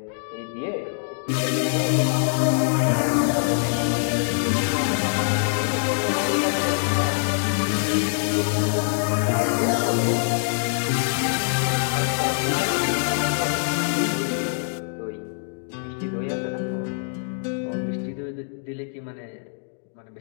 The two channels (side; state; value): right; silent; 63 dB below the other